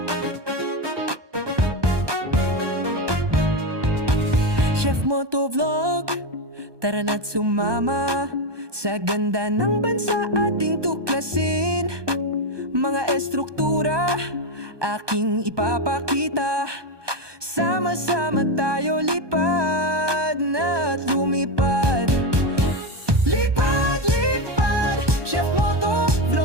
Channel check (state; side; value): late; left; 1.2 ms